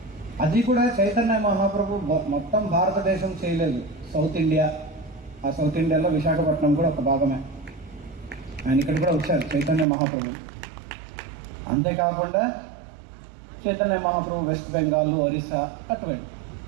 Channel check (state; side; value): drops out; left; at 9.9 s